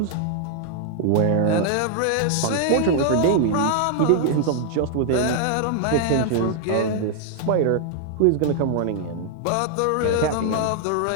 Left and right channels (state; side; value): different; both; correlation -0.01